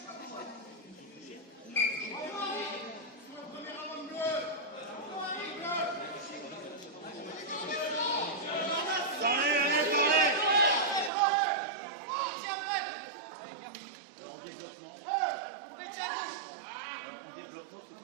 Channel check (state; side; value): drops out; left; at 11.1 s